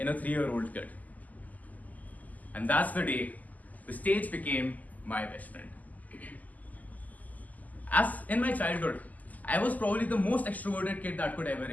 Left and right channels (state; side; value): late; right; 0.079 ms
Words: a 3-year-old kid. And that's the day the stage became my best friend. As in my childhood, I was probably the most extroverted kid that could ever